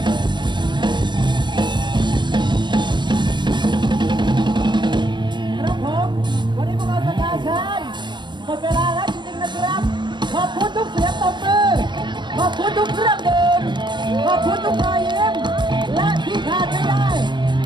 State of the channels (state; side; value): late; left; 0.22 ms